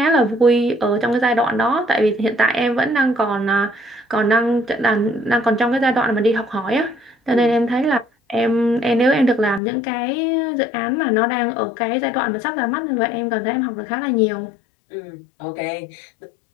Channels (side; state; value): right; drops out; at 9.6 s